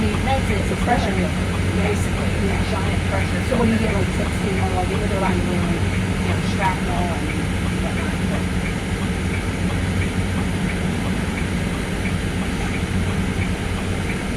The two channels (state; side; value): identical; both; correlation 1.00